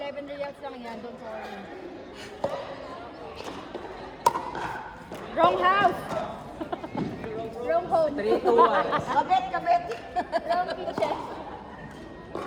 reals lang yan. Don't worry. Wrong house. Wrong home. 3 to 1. Kabet. Wrong kitchen.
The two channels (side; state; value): both; identical; correlation 1.00